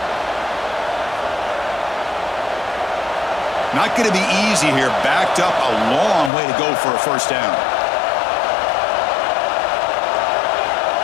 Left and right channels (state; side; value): drops out; right; at 6.3 s